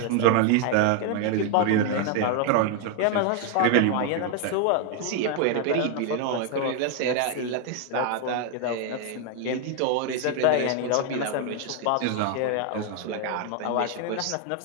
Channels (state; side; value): different; both; correlation 0.00